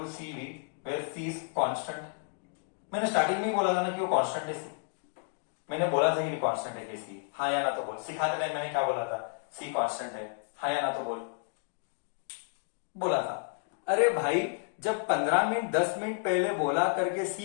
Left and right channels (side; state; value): right; silent; 56 dB below the other